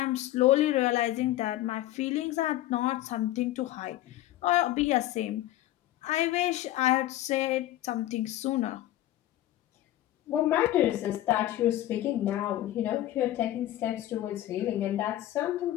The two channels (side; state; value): right; quieter; 14.4 dB